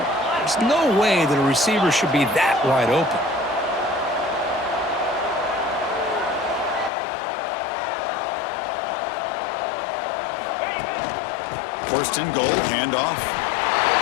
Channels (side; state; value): right; drops out; at 6.9 s